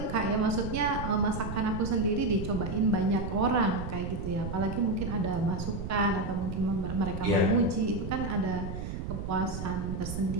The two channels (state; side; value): noise; right; rumble, 5 dB below the sound